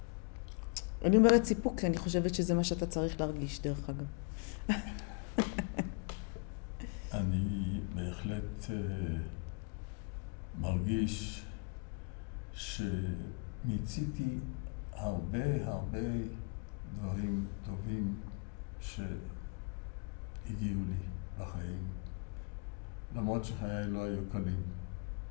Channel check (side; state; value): right; quieter; 34.9 dB